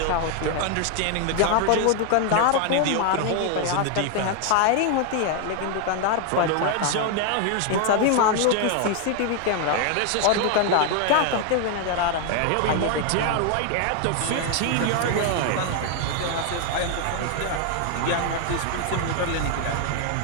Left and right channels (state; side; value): different; both; correlation 0.01